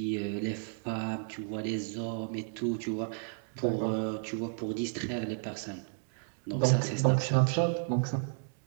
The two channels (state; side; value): silent; left; digital silence